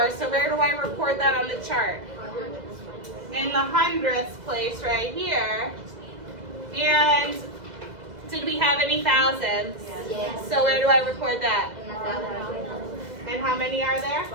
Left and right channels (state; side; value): late; left; 2.1 ms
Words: So where do I record that on the chart? In the hundredths place right here. And did we have any thousandths? Yes. So where do I record that? And how many are there?